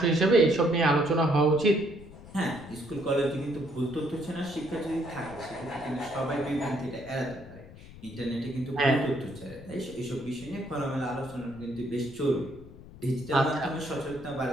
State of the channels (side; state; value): left; noise; rumble, 18 dB below the sound